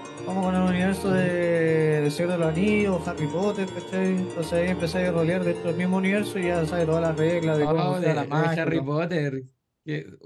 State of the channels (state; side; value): identical; both; correlation 1.00